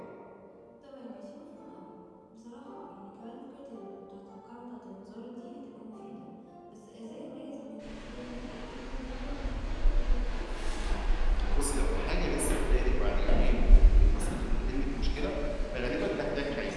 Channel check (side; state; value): both; identical; correlation 1.00